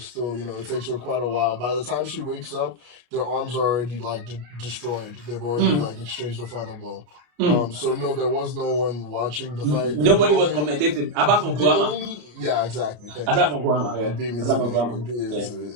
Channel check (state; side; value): late; left; 33 ms